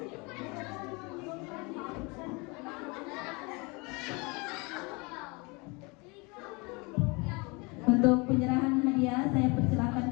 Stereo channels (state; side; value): quieter; right; 28.3 dB